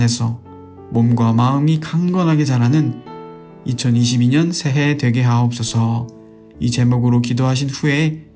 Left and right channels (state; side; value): identical; both; correlation 1.00